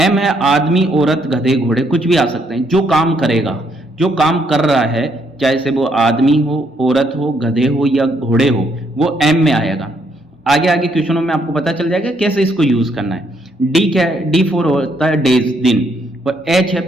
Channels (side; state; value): both; normal; correlation 0.72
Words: है आदमी, औरत, गधे, घोड़े, कुछ भी आ सकते हैं। जो काम करेगा, जो काम कर रहा है, चाहे से वो आदमी हो, औरत हो, गधे हो या घोड़े हो, वो एम में आएगा। आगे आगे क्वेश्चनों में आपको पता चल जाएगा कैसे इसको यूज करना है। डी क्या है, डी फॉर होता है डेज, दिन, और एच है